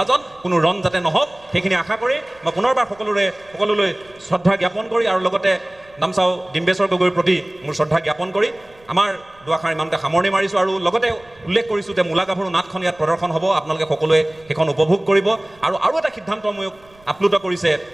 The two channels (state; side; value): noise; right; rumble, 29 dB below the sound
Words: কোনো ৰণ যাতে নহওক সেইখিনি আশা কৰি মই পুনৰবাৰ সকলোলৈ শ্ৰদ্ধা জ্ঞাপন কৰি আৰু লগতে নামচাও ডিম্বেশ্বৰ গগৈৰ প্ৰতি মোৰ শ্ৰদ্ধা জ্ঞাপন কৰি আমাৰ দুআষাৰ ইমানতে সামৰণি মাৰিছোঁ আৰু লগতে উল্লেখ কৰিছোঁ যে মূলা গাভৰু নাটখন ইয়াত প্ৰদৰ্শন হ'ব আপোনালোকে সকলোৱে সেইখন উপভোগ কৰিব আৰু এটা সিদ্ধান্ত মোক আপ্লুত কৰিছে